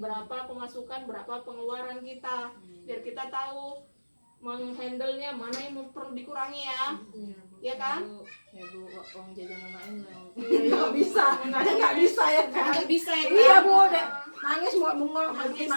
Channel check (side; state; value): both; inverted; correlation -1.00